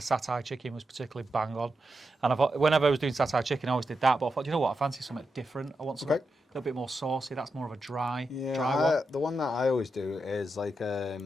chicken was particularly bang on. And whenever I was doing satay chicken, I always did that. But I thought, you know what, I fancy something different. I want something a little bit more saucy. That's more of a dry one. The one that I always do is like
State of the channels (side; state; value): both; normal; correlation 0.87